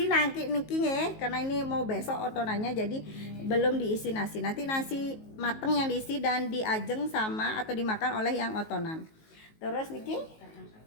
nanti niki ya, karena ini mau besok otonannya jadi belum diisi nasi. Nanti nasi mateng yang diisi dan diajeng sama atau dimakan oleh yang otonan. Terus niki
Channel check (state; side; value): late; right; 19 ms